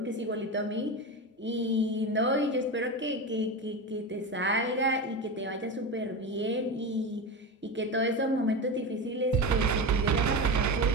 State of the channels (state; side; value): normal; both; correlation 0.21